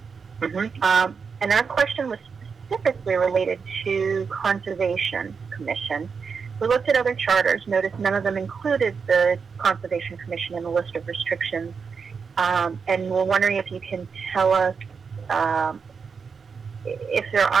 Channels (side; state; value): left; quieter; 5.7 dB